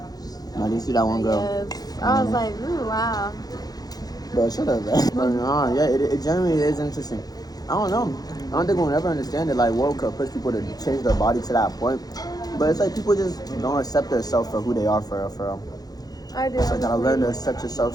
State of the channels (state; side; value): late; right; 0.19 ms